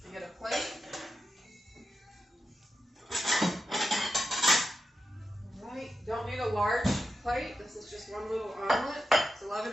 I get a plate. All right, don't need a large plate. This is just one little omelet. It's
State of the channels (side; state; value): both; normal; correlation 0.89